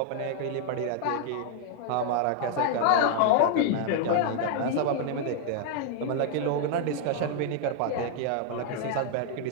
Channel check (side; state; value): both; different; correlation 0.00